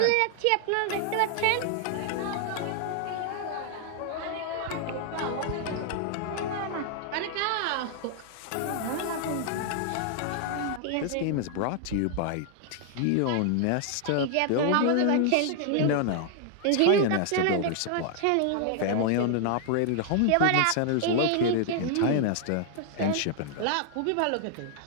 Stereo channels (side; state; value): both; different; correlation 0.00